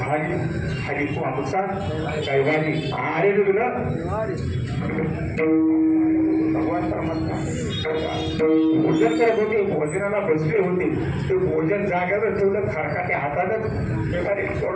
हरी तू आमचा कैवारी अरे तुला भगवान परमात्मा भोजन करत होते. भोजनाला बसले होते. ते भोजन जाग्यावर ठेवलं खरकाच्या हातातच एखादी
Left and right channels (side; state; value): both; identical; correlation 1.00